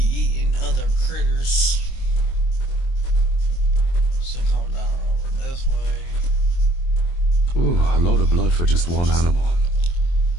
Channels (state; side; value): late; right; 23 ms